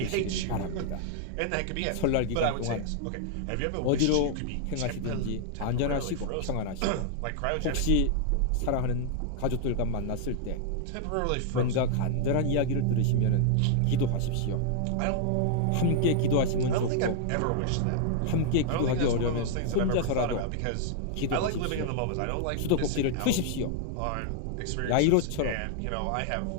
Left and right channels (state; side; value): different; both; correlation 0.00